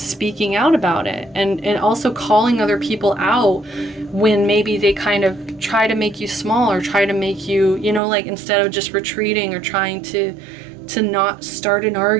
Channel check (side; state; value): left; drops out; at 8.0 s